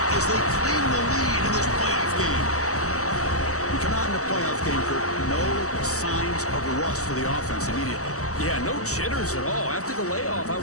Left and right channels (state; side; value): late; right; 0.65 ms